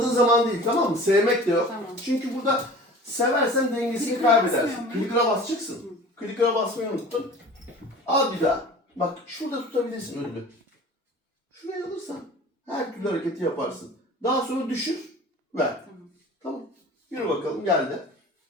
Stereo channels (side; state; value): both; normal; correlation 0.41